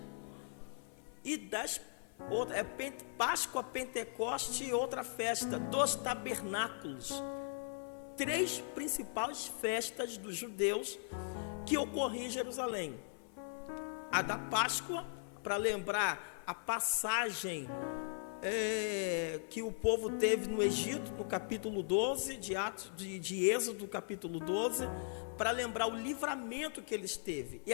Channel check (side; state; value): right; silent; 52 dB below the other